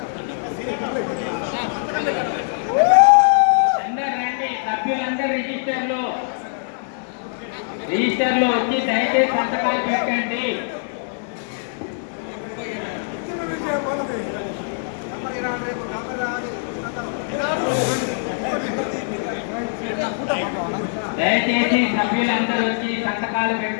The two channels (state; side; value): silent; right; 64 dB below the other